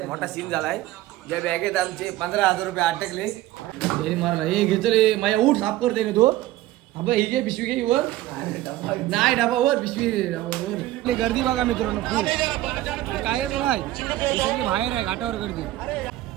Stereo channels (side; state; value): left; quieter; 15.8 dB